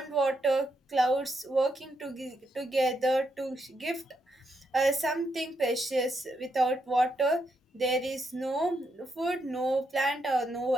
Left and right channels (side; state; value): both; normal; correlation 0.80